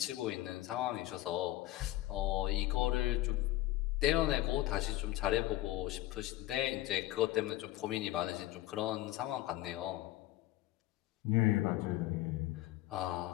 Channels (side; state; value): right; quieter; 15.9 dB